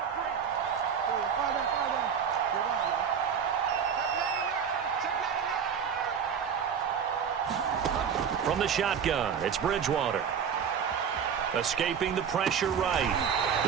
From the shotgun, it's Bridgewater. Escaping the pressure right.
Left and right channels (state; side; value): quieter; left; 7.4 dB